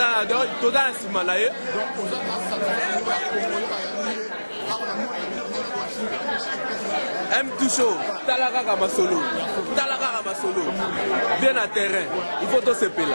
donc tout dans simanaye. M2 show, talaka kama solo. Bien à terrain. Il faut tout se payer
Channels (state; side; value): inverted; both; correlation -1.00